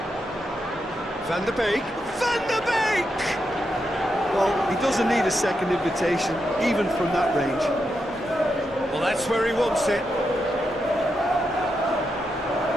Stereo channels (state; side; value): normal; both; correlation 0.85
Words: Van der Beek. Van der Beek! Well, he doesn't need a second invitation, even from that range. Well, that's where he wants it.